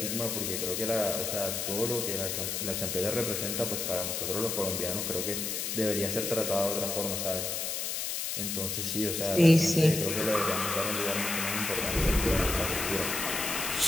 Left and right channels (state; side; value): noise; left; hiss, 2 dB below the sound